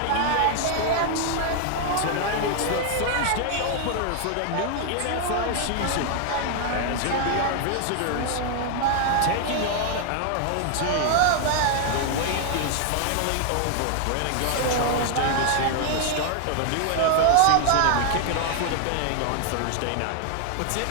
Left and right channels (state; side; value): different; both; correlation 0.00